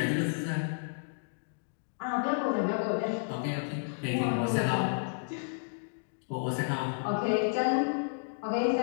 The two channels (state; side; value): silent; right; digital silence